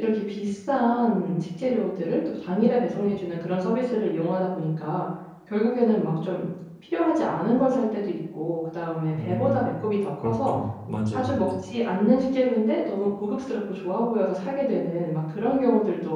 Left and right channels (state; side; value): identical; both; correlation 1.00